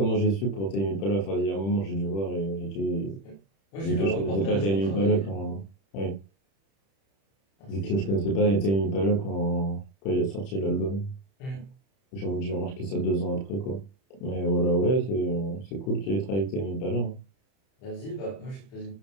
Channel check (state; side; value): late; right; 31 ms